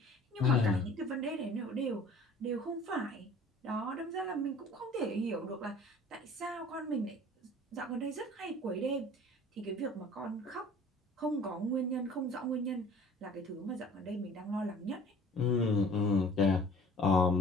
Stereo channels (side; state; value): both; normal; correlation 0.48